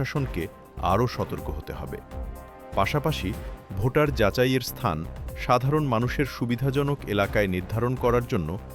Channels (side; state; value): both; identical; correlation 1.00